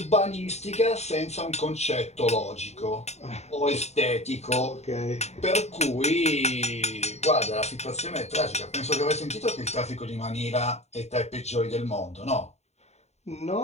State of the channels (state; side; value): late; right; 0.32 ms